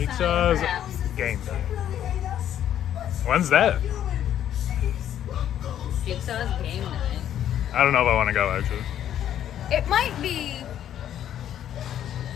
game day. When's that? Jigsaw's game night. I don't know if I want to go actually. It might be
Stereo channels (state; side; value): quieter; right; 10.7 dB